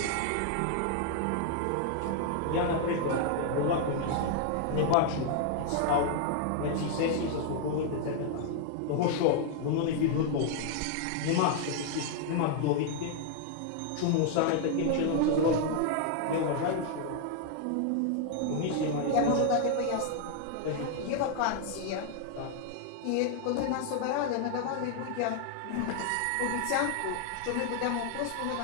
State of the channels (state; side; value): different; both; correlation 0.00